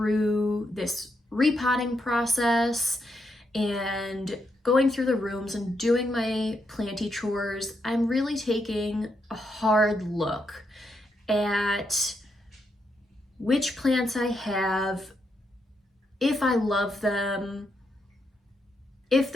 this repotting process and going through the rooms and doing my planty chores, I'm really taking a hard look at which plants I have, if I love them, if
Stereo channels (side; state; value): both; normal; correlation 0.80